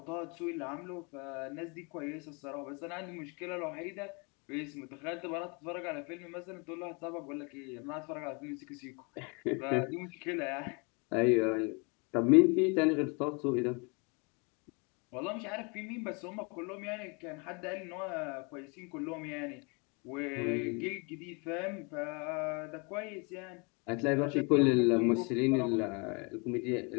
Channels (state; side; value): quieter; right; 32.0 dB